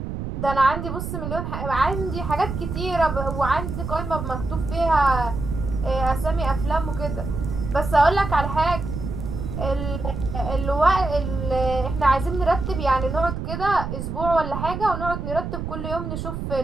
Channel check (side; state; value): right; noise; rumble, 5 dB below the sound